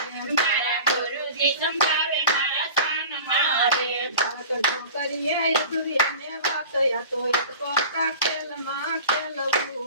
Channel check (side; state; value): both; inverted; correlation -0.37